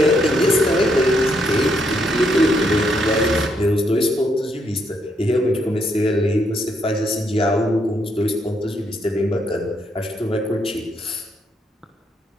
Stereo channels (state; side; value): normal; both; correlation 0.75